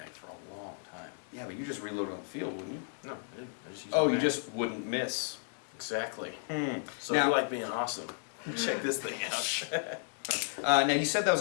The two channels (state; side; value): silent; right; 55 dB below the other